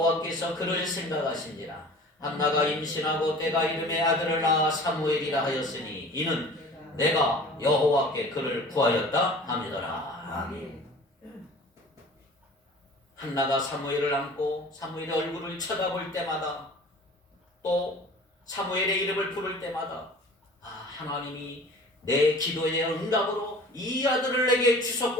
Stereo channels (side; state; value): both; normal; correlation 0.44